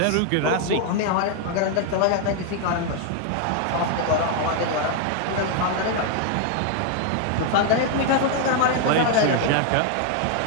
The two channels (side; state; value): both; different; correlation 0.00